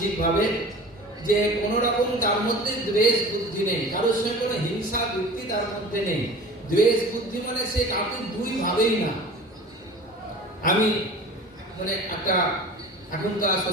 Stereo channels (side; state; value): both; normal; correlation 0.39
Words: যে কোন রকম তার মধ্যে দ্বেষ বুদ্ধি নেই, কারোর সঙ্গে কোনো হিংসা বৃত্তি তার মধ্যে নেই। দ্বেষ বুদ্ধি মানে সে কাউকে দুই ভাবেই না। আমি মানে একটা এখনকার